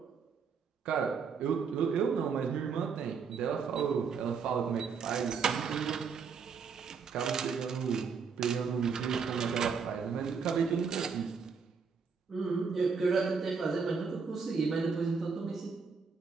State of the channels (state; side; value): quieter; left; 5.7 dB